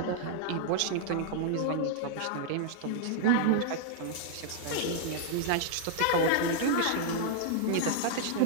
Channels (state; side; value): different; both; correlation -0.01